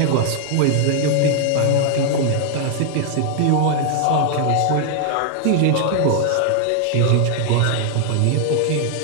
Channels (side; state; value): both; different; correlation 0.00